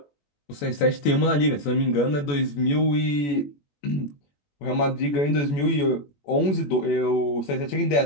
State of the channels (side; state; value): right; late; 21 ms